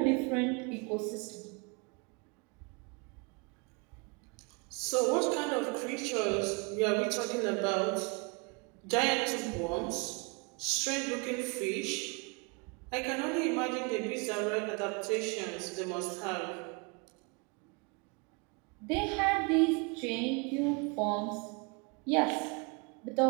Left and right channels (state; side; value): quieter; left; 30.6 dB